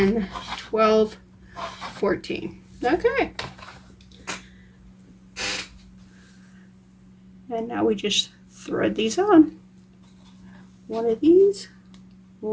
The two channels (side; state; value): both; identical; correlation 1.00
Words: 12, 14. Okay. And now we just thread these on. One of these,